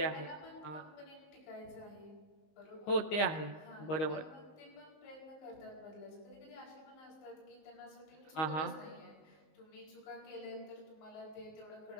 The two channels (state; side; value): late; right; 19 ms